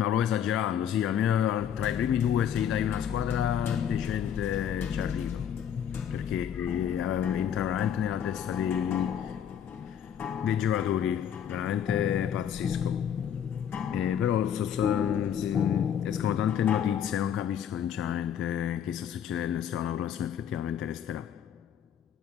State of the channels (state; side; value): quieter; right; 9.1 dB